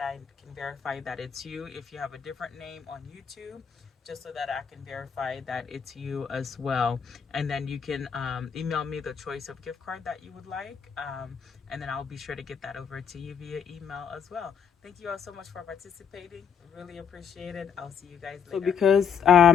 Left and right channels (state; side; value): quieter; right; 7.3 dB